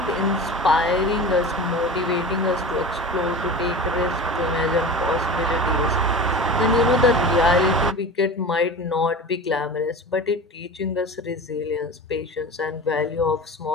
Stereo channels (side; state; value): both; normal; correlation 0.32